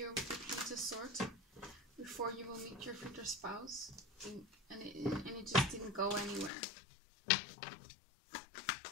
with the Queen of Swords before you will meet your future spouse, and it just didn't go anywhere.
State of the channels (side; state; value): right; drops out; at 6.5 s